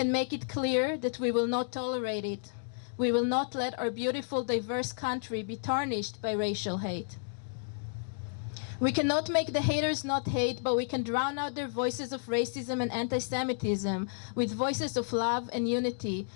make it clear that we will not tolerate it. We will not let our beautiful, diverse country be tarnished by racial hate. We cannot make the haters not hate, but we can drown out their voices of racism and anti-Semitism with voices of love and unity,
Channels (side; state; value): right; silent; digital silence